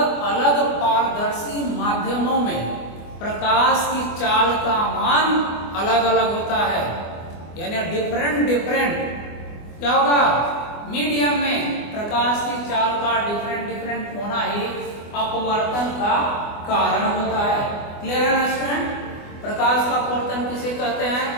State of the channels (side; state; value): right; late; 24 ms